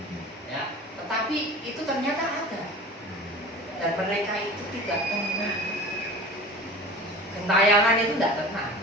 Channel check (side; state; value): both; normal; correlation 0.38